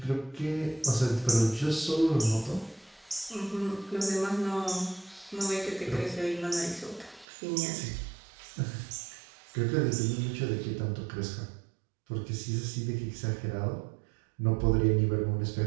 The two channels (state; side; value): drops out; left; at 7.2 s